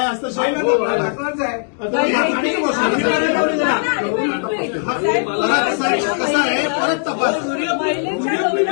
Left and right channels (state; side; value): silent; right; 67 dB below the other